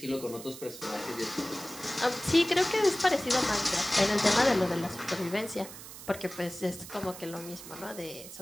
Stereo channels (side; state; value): right; noise; hiss, 14 dB below the sound